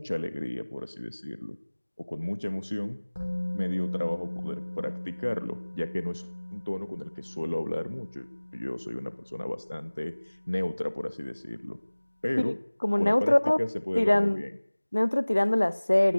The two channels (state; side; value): inverted; both; correlation -1.00